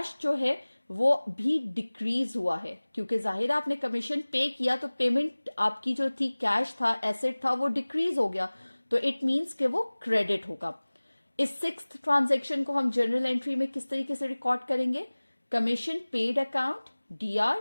जो है वो भी डिक्रीज हुआ है, क्योंकि जाहिर आपने कमीशन पे किया तो पेमेंट आपकी जो थी, कैश था, एसेट था, वो डिक्रीज हो गया, तो इट मीन्स कि वो क्रेडिट होगा। इस 6th ट्रांजैक्शन को हम जर्नल एंट्री में किस तरीके से रिकॉर्ड करेंगे? Commission paid account DR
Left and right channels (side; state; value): both; inverted; correlation -1.00